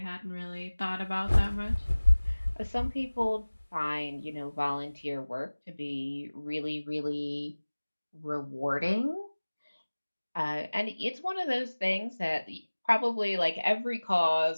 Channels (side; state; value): both; inverted; correlation -1.00